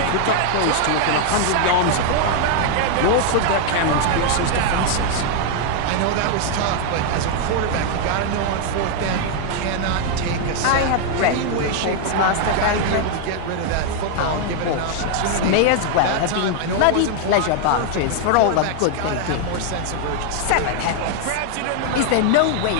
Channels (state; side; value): different; both; correlation 0.00